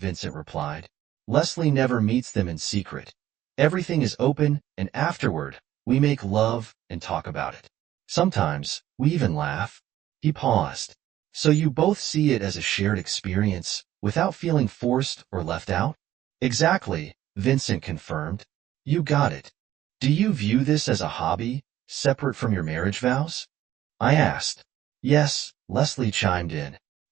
replied. "Leslie never meets them in secret. Everything is open, and afterward, we make love and talk about it. Sometimes, we even laugh." He paused. "So you both see it as a shared experience, without feeling forced or left out?" "Exactly," Vincent confirmed. "You got it. Do you view this as a hobby, separate from your marriage vows?" I asked. "Yes," Leslie chimed in.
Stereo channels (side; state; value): left; quieter; 13.1 dB